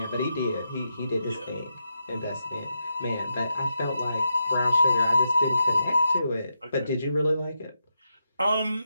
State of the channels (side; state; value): both; inverted; correlation -0.85